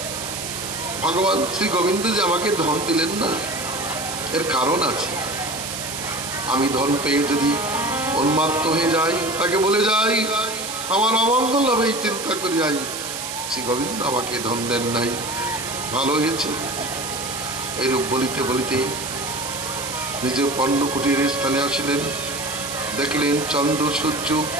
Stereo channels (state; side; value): noise; right; hiss, 6 dB below the sound